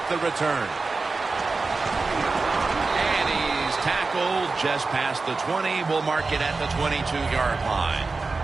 the return. And he's tackled just past the 20. We'll mark it at the 22-yard line.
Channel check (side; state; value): left; quieter; 3.9 dB